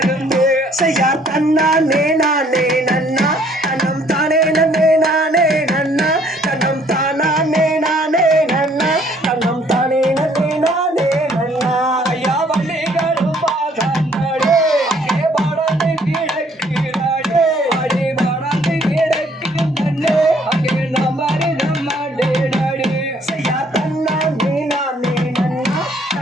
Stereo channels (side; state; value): both; normal; correlation 0.62